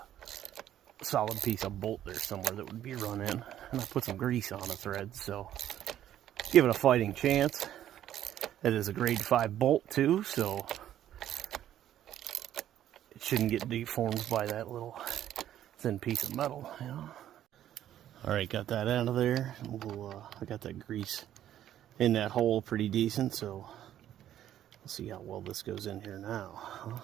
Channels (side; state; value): left; quieter; 11.6 dB